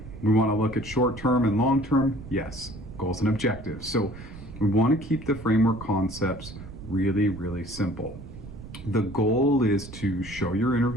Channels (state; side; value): noise; right; rumble, 14 dB below the sound